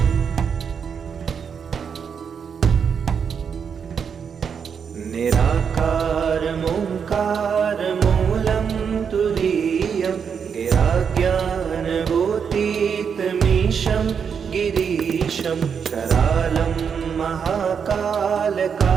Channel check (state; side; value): quieter; left; 6.8 dB